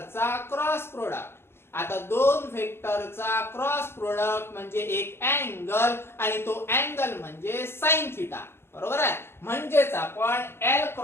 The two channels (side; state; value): right; late; 0.12 ms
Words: क्रॉस प्रोडक्ट. आता दोन व्हेक्टरचा क्रॉस प्रोडक्ट म्हणजे एक अँगल, आणि तो अँगल म्हणजे साइन थिटा, बरोबर आहे. म्हणजेच आपण L